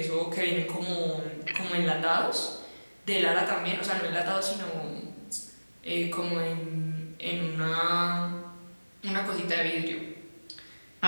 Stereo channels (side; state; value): both; inverted; correlation -1.00